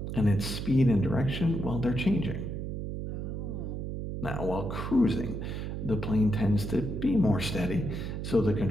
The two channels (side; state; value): right; noise; hum, 5 dB below the sound